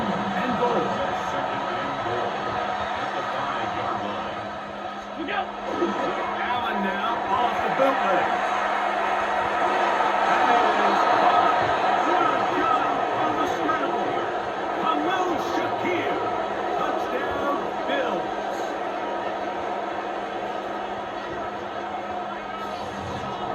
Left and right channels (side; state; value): both; identical; correlation 1.00